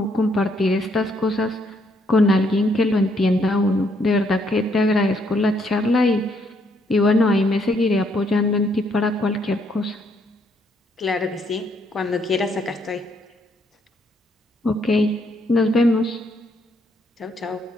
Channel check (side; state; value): both; normal; correlation 0.72